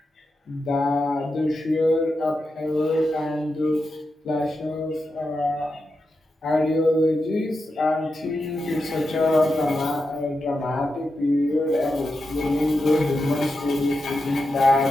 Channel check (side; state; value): both; normal; correlation 0.88